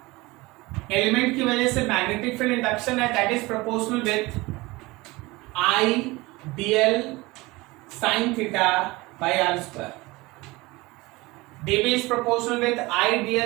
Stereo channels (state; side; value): quieter; left; 21.9 dB